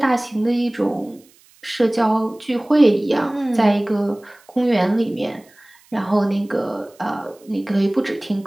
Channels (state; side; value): noise; right; hiss, 30 dB below the sound